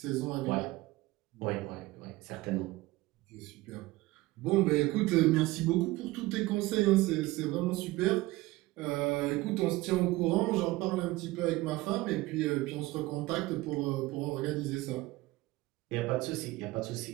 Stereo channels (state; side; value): quieter; left; 19.5 dB